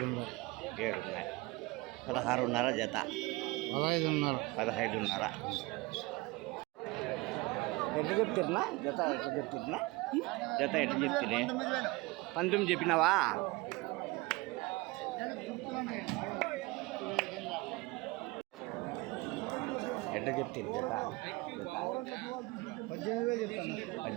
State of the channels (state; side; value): quieter; left; 23.0 dB